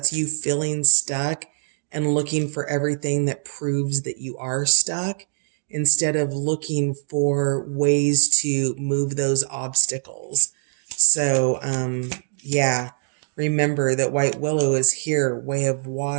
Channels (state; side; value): silent; left; digital silence